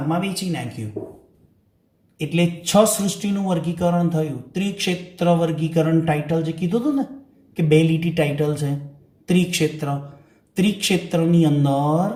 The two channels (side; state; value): both; identical; correlation 1.00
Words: વહેંચી નાખ્યું, એટલે 6 સૃષ્ટિનું વર્ગીકરણ થયું. ત્રિક્ષેત્ર વર્ગીકરણ ટાઇટલ જે કીધું હતું ને કે 2 લીટી ટાઇટલ છે. ત્રિક્ષેત્રની અંદર